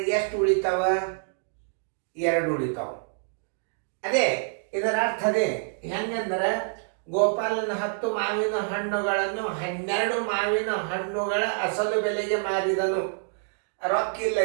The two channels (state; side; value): silent; left; digital silence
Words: ಎಷ್ಟು ಉಳಿತಾವ? 2 ಉಳಿತಾವ. ಅದೇ ಇದರ ಅರ್ಥ. ಅದೇ ಹೆಂಗಂದ್ರೆ, ಗೋಪಾಲನ 10 ಮಾವಿನ ಹಣ್ಣುಗಳನ್ನು 12 ಮಾವಿನ ಹಣ್ಣುಗಳ ಅಸಲು ಬೆಲೆಗೆ ಮಾರಿದನು. ರೊಕ್ಕ ಇಲ್ಲ